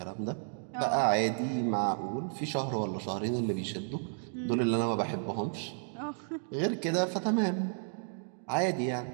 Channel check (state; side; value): silent; left; digital silence